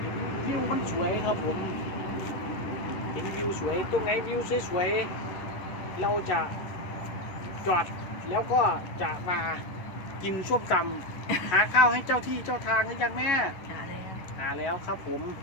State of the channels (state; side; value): late; right; 10 ms